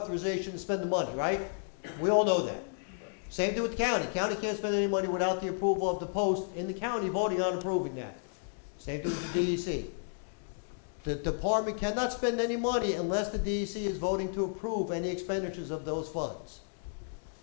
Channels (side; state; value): right; silent; digital silence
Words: to spend the money, right? We all know that. Same thing with the county. County can't spend any money without the approval of the post in the county voting on approving that. Same thing with the DEC. The department cannot spend any money unless the DEC is voting to approve any expenditures of those funds.